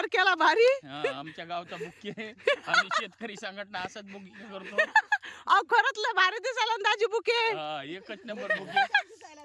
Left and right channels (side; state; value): both; identical; correlation 1.00